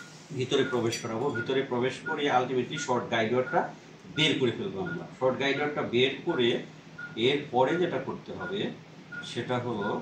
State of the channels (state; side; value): identical; both; correlation 1.00